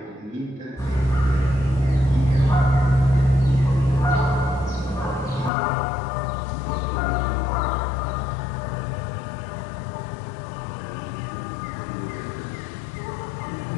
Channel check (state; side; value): drops out; right; at 5.5 s